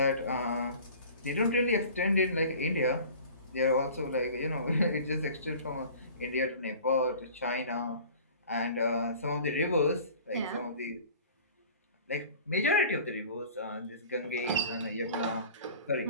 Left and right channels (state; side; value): inverted; both; correlation -0.44